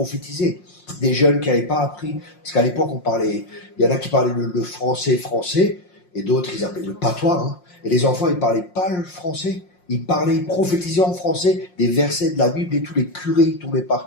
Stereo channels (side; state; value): right; late; 5.6 ms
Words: Des jeunes qui n'avaient pas appris. Parce qu'à l'époque, on parlait, il y en a qui parlaient le français, et d'autres, ils appelaient le patois, hein. Et les enfants, ils parlaient pas le français. Ils prophétisaient en français des versets de la Bible et tous les curés, ils tombaient par